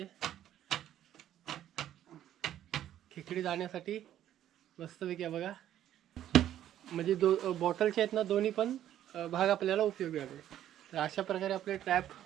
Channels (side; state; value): left; quieter; 11.6 dB